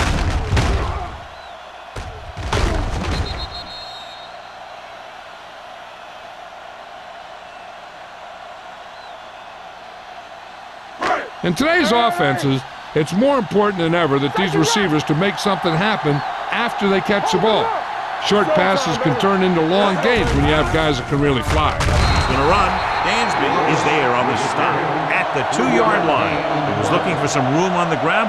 In today's offenses, it's more important than ever that these receivers to make something happen after they catch the ball. Short passes can turn into long gains when you have guys that can really fly. He's going to run. Dansby is there on the stop at the 2-yard line. He was looking for some room on the ground,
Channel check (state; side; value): identical; both; correlation 1.00